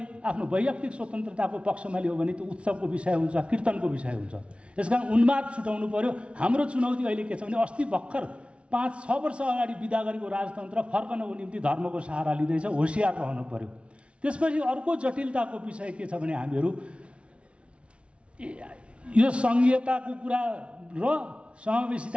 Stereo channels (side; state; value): left; late; 0.060 ms